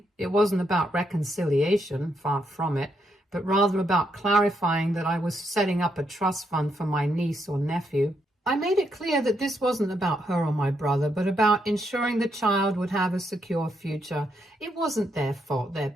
It wasn't about reconciliation, far from it, but rather about clarifying that I was setting up a trust fund for my niece or nephew. I made it clear that this wasn't about her or my brother, but about ensuring the child would have a secure future. It wasn't their fault their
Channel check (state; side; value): normal; both; correlation 0.78